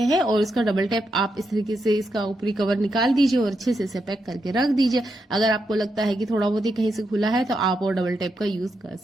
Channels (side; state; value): both; normal; correlation 0.84